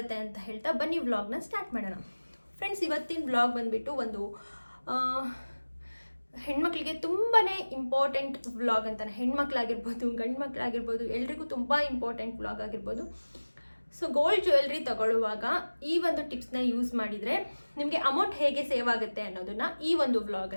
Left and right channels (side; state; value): both; inverted; correlation -1.00